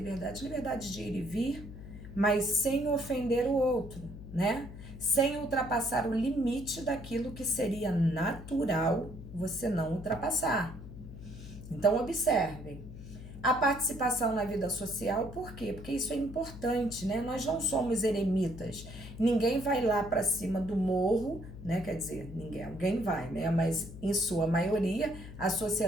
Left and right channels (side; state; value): left; noise; hum, 13 dB below the sound